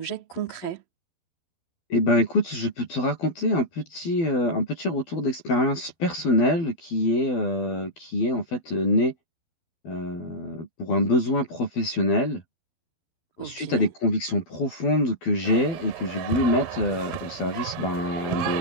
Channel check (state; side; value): late; right; 12 ms